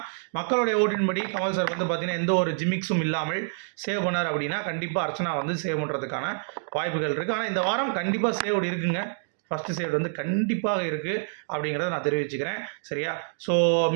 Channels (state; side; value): silent; left; digital silence